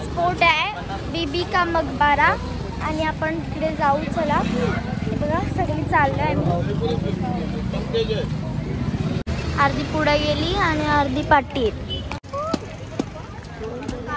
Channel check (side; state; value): both; identical; correlation 1.00